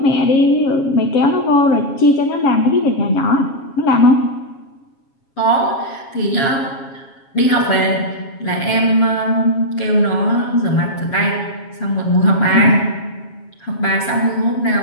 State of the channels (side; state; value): right; late; 7.3 ms